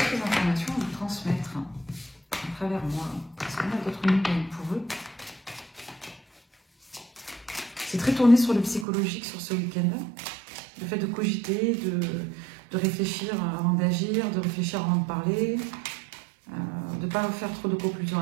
informations à vous transmettre à travers moi? Est-ce qu'on a d'autres nouvelles pour eux? C'est très tourné sur le psychologique sur ce week-end. Le fait de cogiter, de réfléchir avant d'agir, de réfléchir avant de parler, de ne pas faire trop de conclusions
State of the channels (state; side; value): drops out; left; at 8.8 s